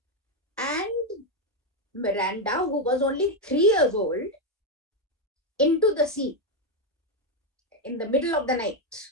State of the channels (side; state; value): both; normal; correlation 0.05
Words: and Miranda, who was only 3 years old, into the sea in the middle of the night.